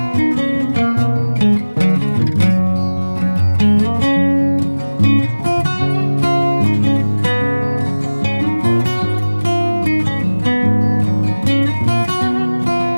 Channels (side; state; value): both; inverted; correlation -1.00